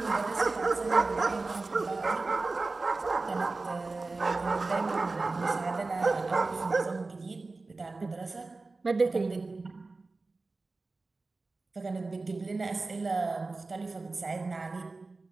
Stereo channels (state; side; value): quieter; left; 3.6 dB